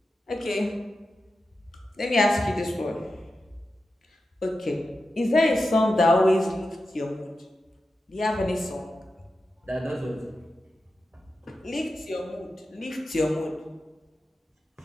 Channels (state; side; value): normal; both; correlation 0.91